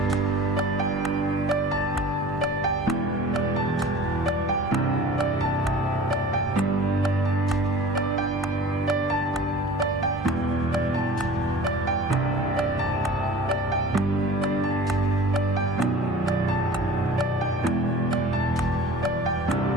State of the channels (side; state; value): both; normal; correlation 0.42